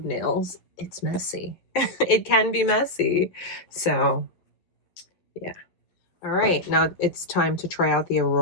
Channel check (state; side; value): late; right; 11 ms